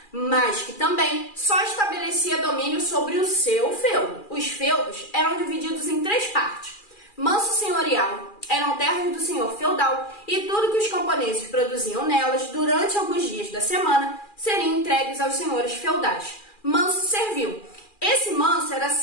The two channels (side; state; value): right; late; 2.4 ms